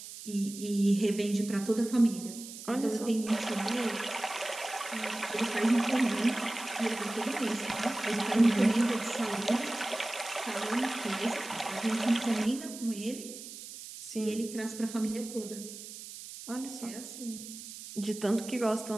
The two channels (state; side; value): noise; right; hiss, 12 dB below the sound